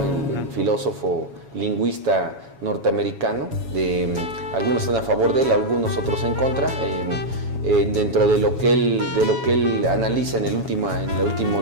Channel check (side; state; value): left; late; 7.2 ms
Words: el filósofo lingüista norteamericano, algunos están a favor de él, algunos otros en contra. Dentro de lo que él analiza en el último